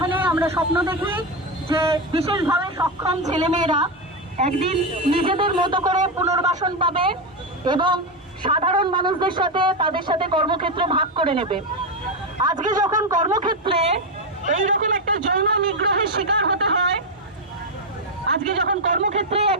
আমরা স্বপ্ন দেখি যে বিশেষভাবে সক্ষম ছেলেমেয়েরা একদিন নিজেদের মতো করে পুনর্বাসন পাবে এবং সাধারণ মানুষদের সাথে তাদের সাথে কর্মক্ষেত্র ভাগ করে নেবে। আজকে যখন কর্মক্ষেত্রে এইরকম একটা যৌন নিগ্রহের শিকার হতে হয়, আজকে যখন কর্মক্ষেত্রে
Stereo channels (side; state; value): both; normal; correlation 0.09